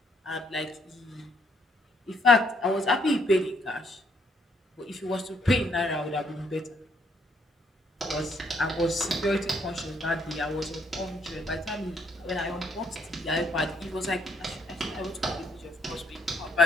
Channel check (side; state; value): both; normal; correlation 0.70